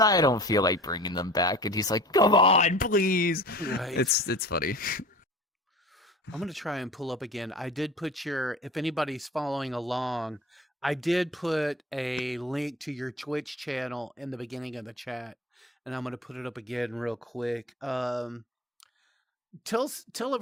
don't feel like bringing them back. And he's like, come on, please. Right. It's funny. I'm gonna try and pull up again. I did put if anybody's following along, I did put a link to your Twitch channel in the beginning of the chat, and I'm gonna put it up again real quick. Tell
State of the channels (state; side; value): normal; both; correlation 0.40